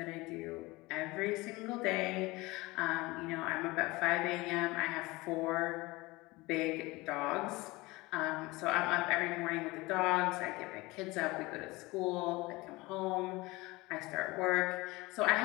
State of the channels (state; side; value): quieter; right; 21.9 dB